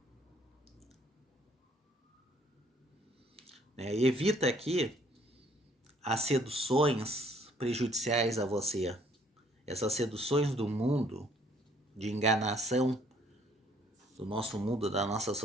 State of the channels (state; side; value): normal; both; correlation 0.62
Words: Evita aqui as seduções prejudiciais a você. Essas seduções do mundo, de enganação do nosso mundo, da nossa